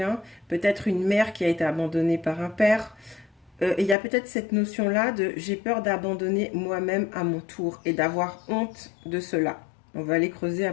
peut-être une mère qui a été abandonnée par un père. Et il y a peut-être cette notion-là de j'ai peur d'abandonner moi-même à mon tour et d'avoir honte de cela. On va aller creuser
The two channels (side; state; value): right; drops out; at 4.0 s